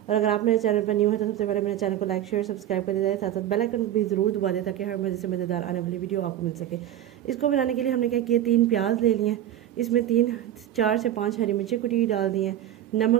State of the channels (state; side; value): quieter; left; 11.8 dB